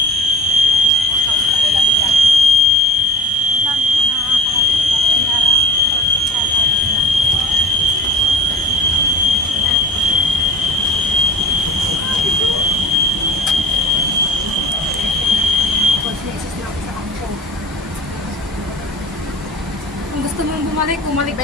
Wala bigla. Ilan na kanyara. Conscious na ako sa kampo. Kung gusto mong bumalik, bumalik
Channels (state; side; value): normal; both; correlation 0.39